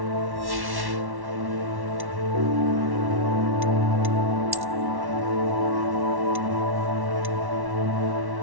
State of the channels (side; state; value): left; late; 1.1 ms